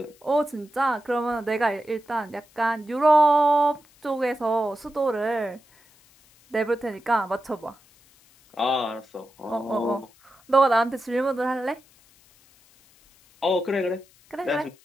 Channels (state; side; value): noise; left; hiss, 29 dB below the sound